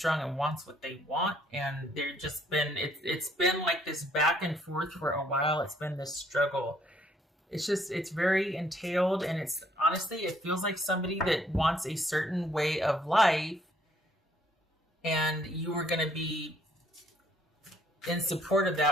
and wants what they want, and they're just been it's been like this back and forth for a while. It's been this struggle. It's very entailed, and it's honestly, it feels like somebody that wants a certain way of life, and you were going to be in support of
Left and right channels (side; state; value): both; normal; correlation 0.65